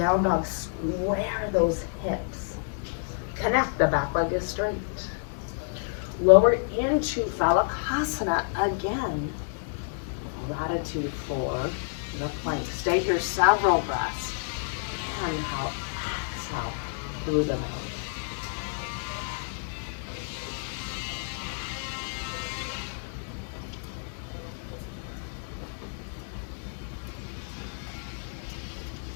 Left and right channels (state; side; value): silent; right; 59 dB below the other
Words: dog, square those hips. Connect, the back leg is straight. Lower into Phalakasana again. Gratitude for the plank. Stay here several breaths. Inhale, exhale through the mouth.